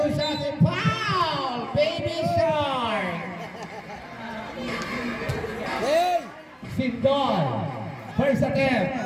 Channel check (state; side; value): identical; both; correlation 1.00